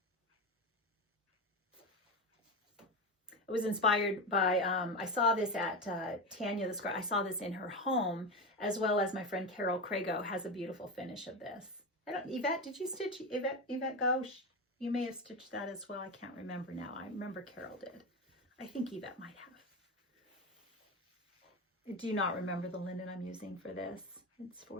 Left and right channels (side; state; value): both; normal; correlation 0.18